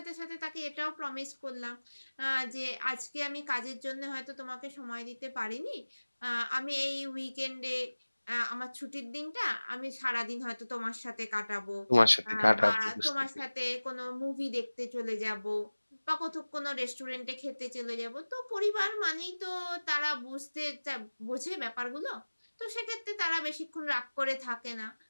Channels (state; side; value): inverted; both; correlation -1.00